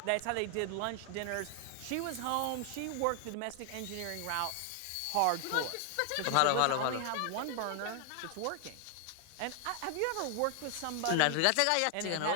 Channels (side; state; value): both; different; correlation 0.00